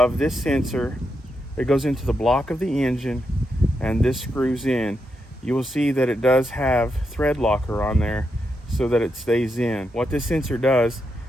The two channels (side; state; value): both; normal; correlation 0.84